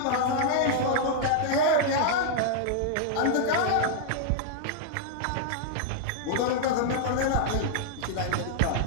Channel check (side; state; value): both; different; correlation -0.01